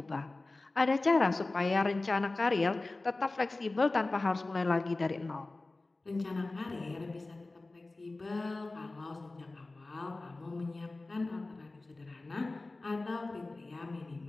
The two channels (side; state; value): right; quieter; 3.1 dB